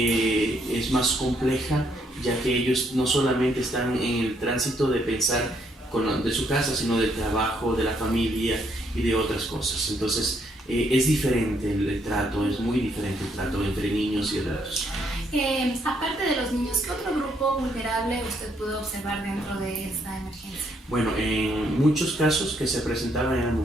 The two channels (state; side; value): normal; both; correlation 0.72